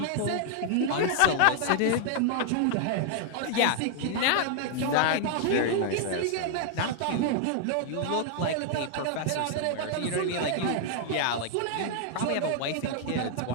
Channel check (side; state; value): both; different; correlation 0.00